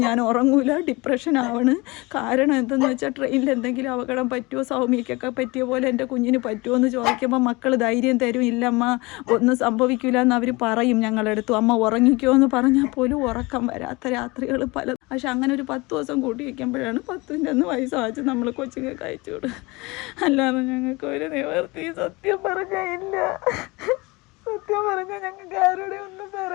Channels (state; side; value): quieter; right; 24.1 dB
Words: ഞാൻ ഉറങ്ങൂല, ഡിപ്രഷൻ ആവണ്. കാരണം എന്തെന്ന് വെച്ചാൽ ട്രെയിനിൽ എന്തെങ്കിലും അപകടം പറ്റുമോ, സൗമ്യക്കൊക്കെ പറ്റിയ പോലെ എൻ്റെ കുഞ്ഞിന് പറ്റുമോ എന്ന് ചോദിക്കുമ്പോൾ മക്കൾ ധൈര്യം തരും. ഇല്ലമ്മ ഒന്നും സംഭവിക്കില്ല എന്ന് അവർ പറയും ഞങ്ങളെടുത്തു. അമ്മ ഉറങ്ങിക്കോ എന്ന് പറഞ്ഞാൽ പോലും ഉറക്കം വരാത്ത രാത്രികൾ പല. പക്ഷെ അങ്ങനെ ഒരു 10 ദിവസം കൂട്ടി വയ്ക്കുമ്പോഴാണ് 10ൻ്റെ അന്ന് വയസ്സാച്ച് നമ്മൾ കൊച്ചുങ്ങൾക്ക് അയച്ചു വിടും. അല്ലാതെ ഞങ്ങൾക്ക് ഒരു നിവർത്തി സത്യം പറഞ്ഞാൽ ഇല്ല. സത്യം പറഞ്ഞാൽ ഞങ്ങൾക്ക് ആരുടെ ഒന്നും